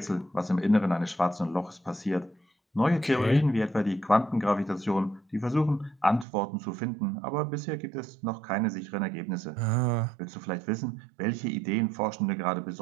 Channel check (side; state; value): left; drops out; at 6.2 s